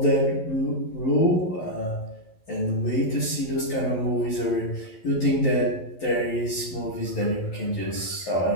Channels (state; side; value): late; right; 11 ms